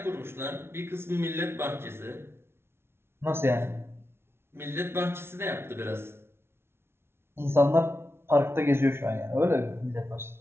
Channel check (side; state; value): left; late; 0.12 ms